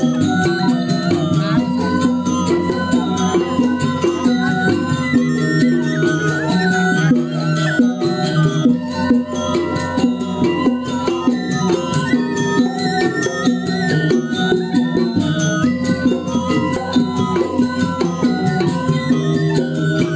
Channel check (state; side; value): identical; both; correlation 1.00